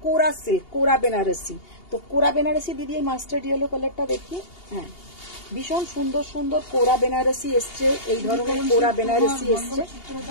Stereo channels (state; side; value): late; right; 2.8 ms